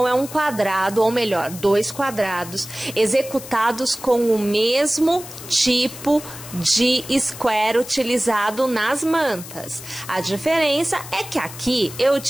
é um quadrado, ou melhor, 2 quadrados executados com o mesmo tipo de square utilizado nas mantas. A diferença é que aqui eu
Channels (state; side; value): noise; left; hiss, 14 dB below the sound